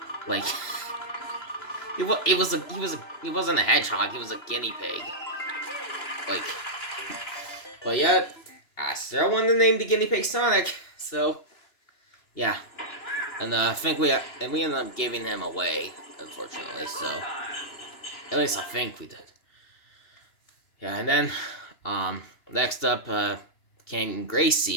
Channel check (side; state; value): right; late; 2.9 ms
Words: he wasn't a hedgehog, he was a guinea pig. But yeah, I still wanted to name the guinea pig Sonic, so, yeah. And, I think we ended up giving him away, unfortunately, so, at least I think we did. Yeah, and then, next up, came